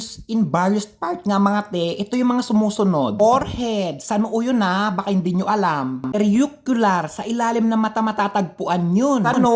in various parts nga mga te. Ito yung mga sumusunod. Forehead, sa noo yun baka hindi nyo alam. Periucular, sa ilalim ng mata matatagpuan yun. Sa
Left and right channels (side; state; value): both; identical; correlation 1.00